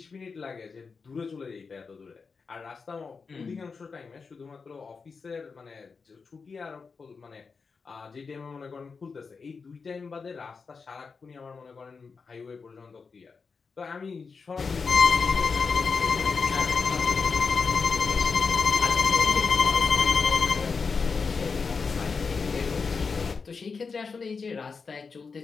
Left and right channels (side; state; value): right; quieter; 5.0 dB